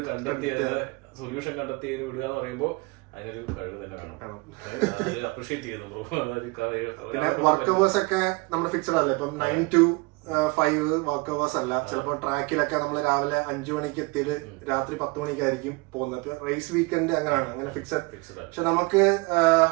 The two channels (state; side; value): quieter; left; 26.4 dB